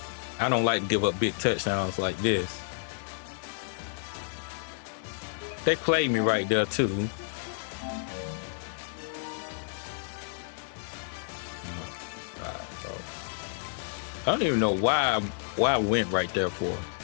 I don't like to give up big touchdowns like this. They played me right there too. I don't even know why I went right there for.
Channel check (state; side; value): silent; right; 58 dB below the other